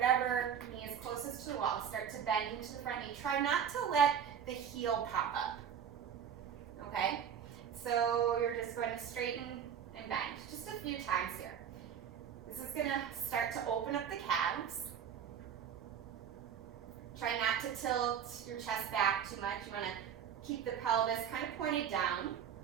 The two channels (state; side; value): quieter; left; 8.3 dB